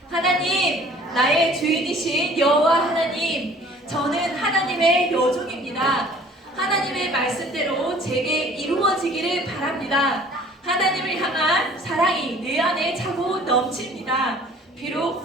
하나님, 나의 주인이신 여호와 하나님, 저는 하나님의 여종입니다. 하나님의 말씀대로 제게 이루어지기를 바랍니다. 하나님을 향한 사랑이 내 안에 차고 넘칩니다.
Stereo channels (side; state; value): both; normal; correlation 0.52